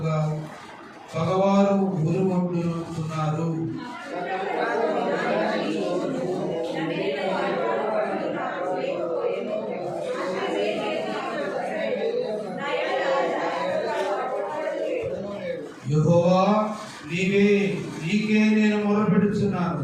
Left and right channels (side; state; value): both; identical; correlation 1.00